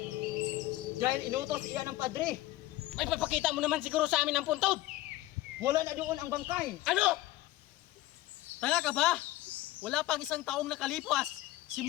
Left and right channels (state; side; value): quieter; right; 16.7 dB